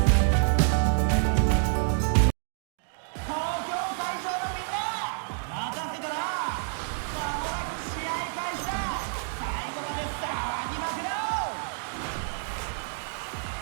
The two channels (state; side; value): silent; left; digital silence